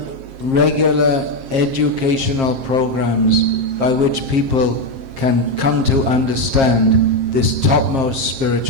regular educational programs by which people can come to understand this topmost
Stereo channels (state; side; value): late; left; 7.5 ms